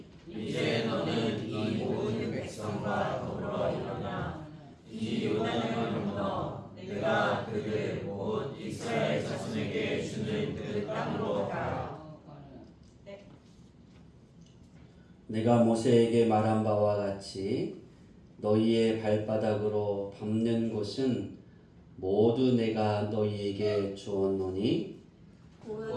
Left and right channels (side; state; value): both; identical; correlation 1.00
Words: 이제 너는 이 모든 백성과 더불어 일어나 이 요단을 건너 내가 그들 곧 이스라엘 자손에게 주는 그 땅으로 가라. 내가 모세에게 말한 바와 같이 너희의 발바닥으로 밟는 곳은 모두 내가 너희에게 주었노니